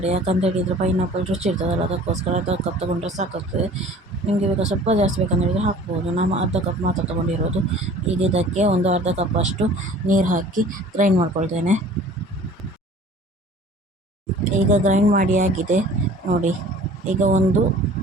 ಯಾಕಂತ ಹೇಳಿದರೆ ಪೈನಾಪಲ್ ರುಚಿ ಇರ್ತದಲ್ಲ, ಅದಕ್ಕೋಸ್ಕರ ಅರ್ಧ ಕಪ್ ತೊಗೊಂಡ್ರೆ ಸಾಕಾಗ್ತದೆ. ನಿಮಗೆ ಬೇಕಾ ಸ್ವಲ್ಪ ಜಾಸ್ತಿ ಬೇಕಂತ ಹೇಳಿದರೆ ಹಾಕ್ಬೋದು. ನಾನು ಅರ್ಧ ಕಪ್ ಮಾತ್ರ ತೊಗೊಂಡಿರೋದು. ಈಗ ಇದಕ್ಕೆ ಒಂದು ಅರ್ಧ ಕಪ್ಪಷ್ಟು ನೀರು ಹಾಕಿ ಗ್ರೈಂಡ್ ಮಾಡ್ಕೊಳ್ತೇನೆ. ಈಗ ಗ್ರೈಂಡ್ ಮಾಡಿ ಆಗಿದೆ ನೋಡಿ. ಈಗ ಒಂದು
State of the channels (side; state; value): both; normal; correlation 0.47